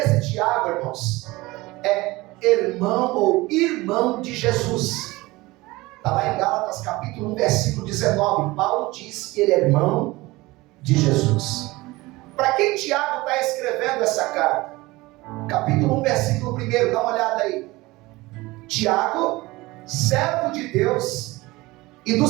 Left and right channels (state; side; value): quieter; left; 20.8 dB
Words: Tiago, irmãos, é irmão ou irmão de Jesus. Está lá em Gálatas capítulo 1, versículo 19. Paulo diz que ele é irmão de Jesus. Para quem Tiago está escrevendo essa carta? Capítulo 1, versículo 1, dá uma olhada aí. Tiago, servo de Deus e do